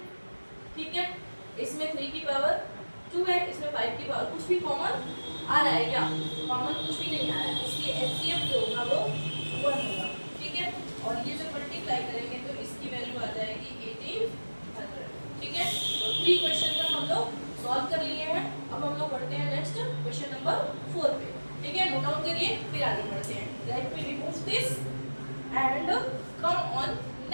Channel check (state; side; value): inverted; both; correlation -1.00